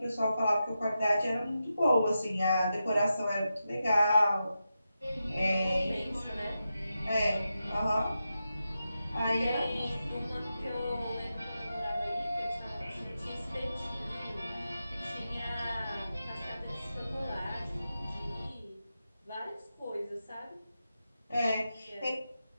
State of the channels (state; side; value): inverted; both; correlation -0.89